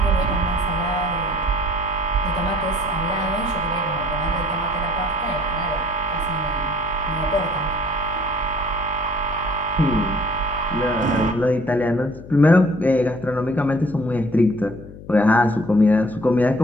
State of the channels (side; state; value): left; noise; hum, 16 dB below the sound